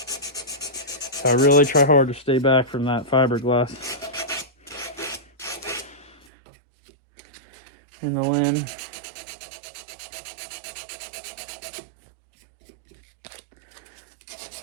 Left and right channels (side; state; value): left; drops out; at 6.2 s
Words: So I really try hard to stay back from that fiberglass in the limb.